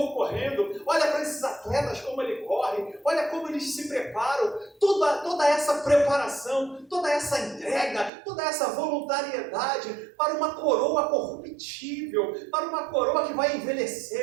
correndo, olha para esses atletas como ele corre, olha como eles se preparam, toda essa preparação, toda essa entrega, toda essa voluntariedade para uma coroa corruptível, para uma coroa que vai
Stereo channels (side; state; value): left; drops out; at 8.1 s